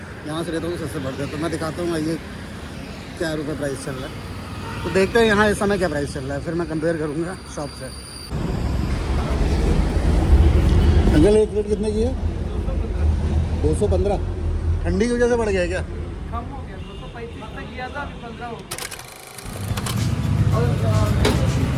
यहाँ से लेता हूँ सस्ते पड़ते हैं। तो मैं दिखाता हूँ ये क्या रुपये प्राइस चल रहा है, तो देखते हैं यहाँ इस समय क्या प्राइस चल रहा है, फिर मैं कंपेयर करूँगा शॉप से। अंकल एक प्लेट कितने की है? 215। ठंडी की वजह से बढ़ गया क्या? कम हो गया, 235 तक किया था, अभी 15 हो गया।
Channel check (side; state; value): both; identical; correlation 1.00